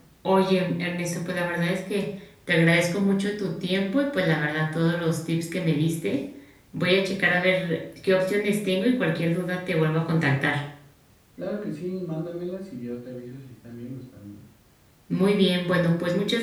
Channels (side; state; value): both; identical; correlation 1.00